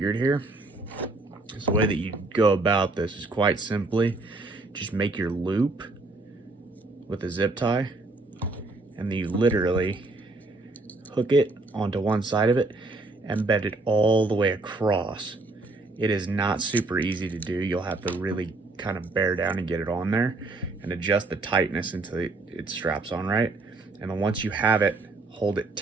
here. So the way that you go about this is quite simply just make your loop with a zip tie, and then you literally hook it onto one side of it and bend it all the way across. It is not super easy to do. You'll have to really kind of bear down and get it on there and adjust the tightness until it straps on right. And then once you have it, hold it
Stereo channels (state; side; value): quieter; left; 3.2 dB